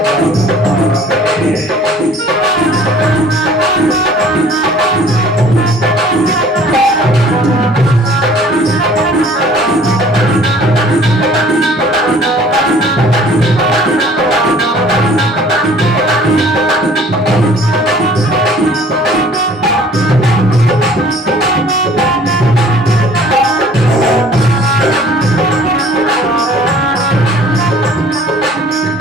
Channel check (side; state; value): both; normal; correlation 0.52